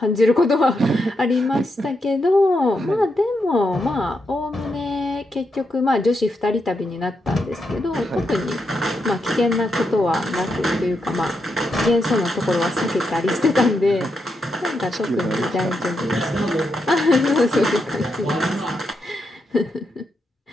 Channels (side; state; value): both; normal; correlation 0.83